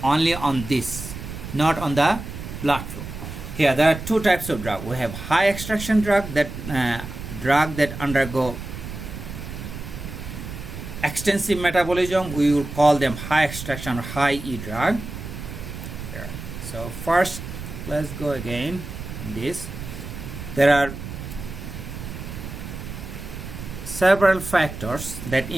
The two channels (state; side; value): noise; right; rumble, 9 dB below the sound